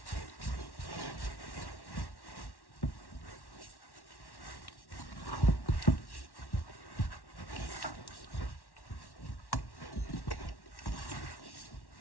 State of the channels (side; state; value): right; late; 1.1 ms